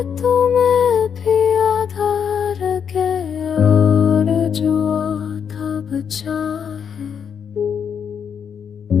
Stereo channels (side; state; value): right; quieter; 7.4 dB